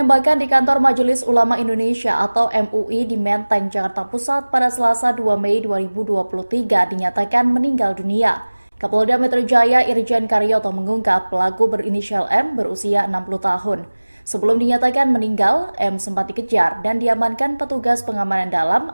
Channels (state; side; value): inverted; both; correlation -1.00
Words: di kantor Majelis Ulama Indonesia atau MUI di Menteng, Jakarta Pusat pada Selasa 2 Mei 2023 dinyatakan meninggal dunia. Kapolda Metro Jaya Irjen Karyoto mengungkap pelaku berinisial M berusia 60 tahun. Sebelum dinyatakan meninggal, M sempat dikejar dan diamankan petugas pengamanan dalam